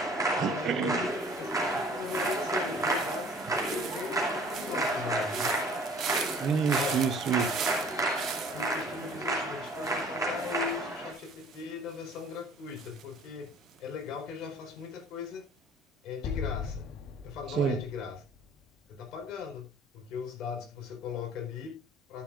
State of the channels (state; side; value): normal; both; correlation 0.51